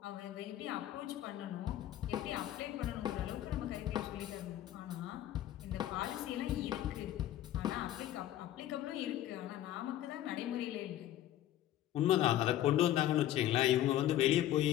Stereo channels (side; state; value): right; quieter; 12.9 dB